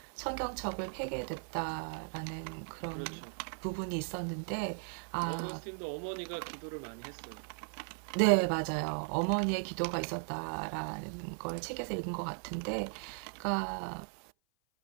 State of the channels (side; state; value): left; silent; 53 dB below the other